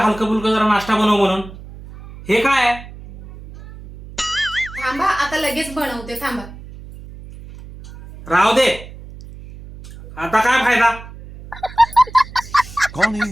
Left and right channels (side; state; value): right; noise; hum, 16 dB below the sound